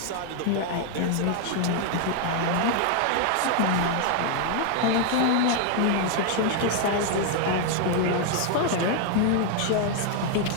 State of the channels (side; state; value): both; different; correlation 0.00